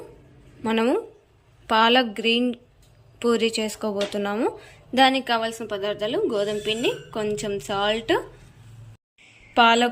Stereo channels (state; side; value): identical; both; correlation 1.00